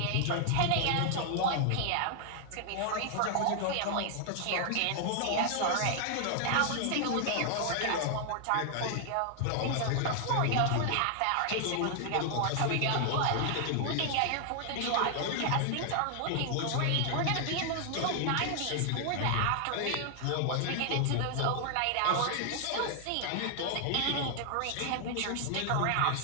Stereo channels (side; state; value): both; different; correlation 0.00